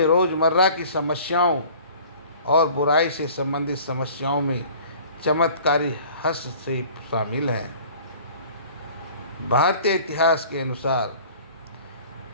रोज़मर्रा की समस्याओं और बुराई से संबंधित समस्याओं में चमत्कारी हस्तक्षेप शामिल हैं। भारतीय इतिहास के अनुसार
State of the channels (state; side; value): inverted; both; correlation -0.47